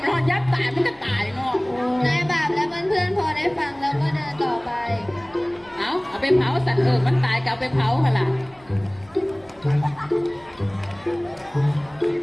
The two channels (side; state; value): left; noise; hum, 28 dB below the sound